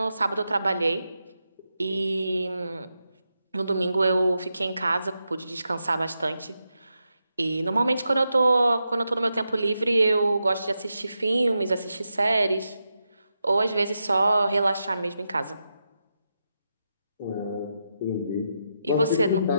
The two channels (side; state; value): both; inverted; correlation -0.86